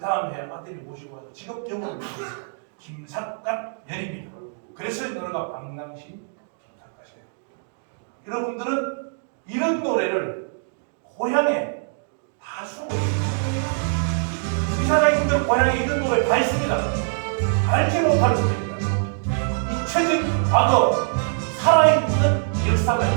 해 아들이 모시고 와서 지금 영원히 모셨어요. 김삿갓 년입니다. 그래서 이 노래가 박낭신 김삿갓이에요. 여러분들은 이런 노래를 고향에 다 쓰고 있어요. 이 사장님들 고향에 이런 노래 다 있습니다. 알지 못할 뿐입니다. 잊혀진 과거, 살아있는 역사가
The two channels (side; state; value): left; silent; 63 dB below the other